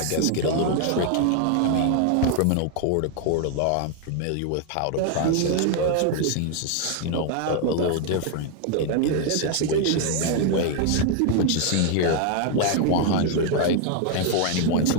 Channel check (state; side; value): different; both; correlation 0.00